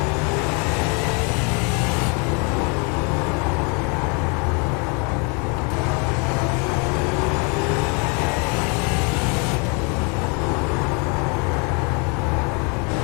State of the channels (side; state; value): right; quieter; 33.8 dB